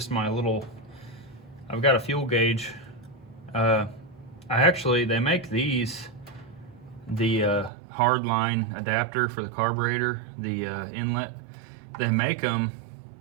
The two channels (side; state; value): left; drops out; at 7.7 s